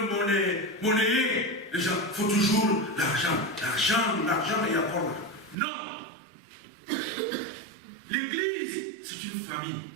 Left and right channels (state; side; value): drops out; left; at 5.6 s